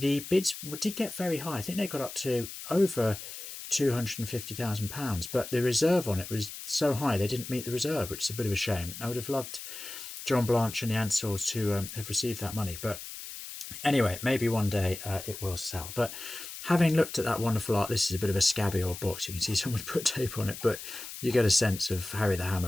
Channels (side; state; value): left; noise; hiss, 10 dB below the sound